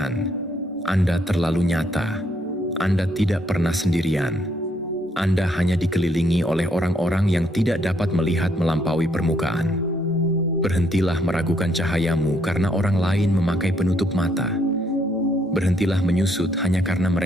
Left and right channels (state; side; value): normal; both; correlation 0.71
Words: Anda terlalu nyata. Anda tidak pernah sendirian. Anda hanya dikelilingi oleh orang-orang yang tidak dapat melihat melampaui permukaan. Berhentilah meragukan cahayamu karena orang lain memakai penutup mata. Berhentilah menyusut hanya karena